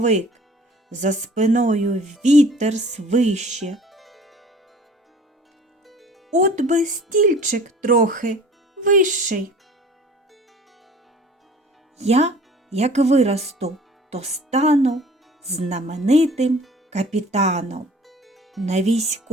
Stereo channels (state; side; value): normal; both; correlation 0.48